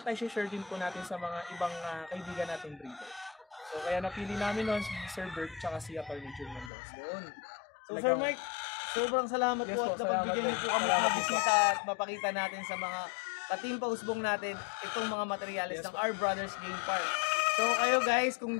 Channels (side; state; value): right; drops out; at 6.7 s